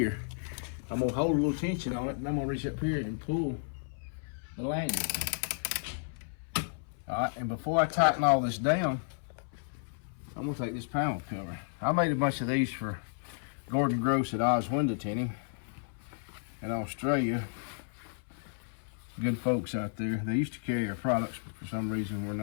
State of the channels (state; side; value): silent; right; 56 dB below the other